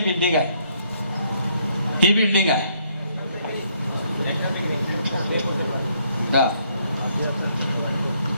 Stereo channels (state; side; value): inverted; both; correlation -0.70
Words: आहे, ही बिल्डिंग आहे.